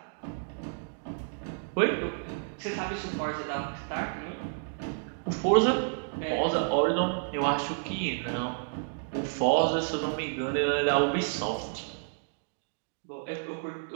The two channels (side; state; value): left; silent; digital silence